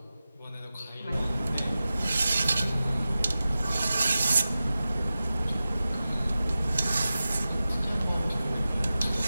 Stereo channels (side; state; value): both; inverted; correlation -0.94